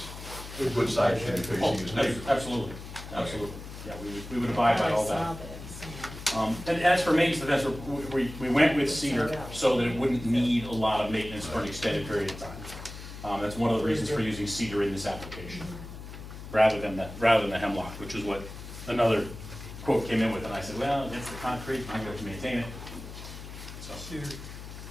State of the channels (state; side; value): noise; left; hum, 12 dB below the sound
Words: the good side should be Oh, facing his neighbor. absolutely, absolutely, yeah, we would abide by all I saw that. that. And as for maintenance of the fence, we went with cedar so that it wouldn't need a lot of maintenance for an extended period of time. That's one of the reasons for using cedar in this application, rather than the hemlock, which is what another quote came in with, and I said, well, it's the concrete, I'm going to maintain it. So, Cedar.